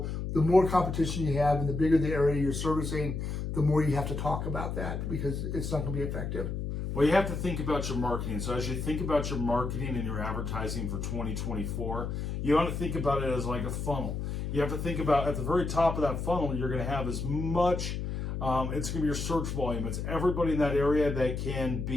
the more competition you have and the bigger the area you're servicing, the more you have to talk about that, because it's not going to be effective. Well, you have to think about your marketing. So as you think about your marketing and your advertising for 2024, you want to think about it as like a funnel. You have to think about at the very top of that funnel, you're going to have as much, it's going to be your search volume. It's everybody in that area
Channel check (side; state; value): left; noise; hum, 3 dB below the sound